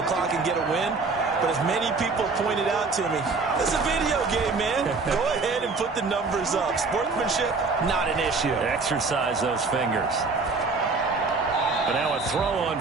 clock and get a win. But as many people pointed out to me, it's a video game, man. Go ahead and put the numbers up. Sportsmanship, not an issue. Exercise those fingers. And now a throw on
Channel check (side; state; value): left; quieter; 4.1 dB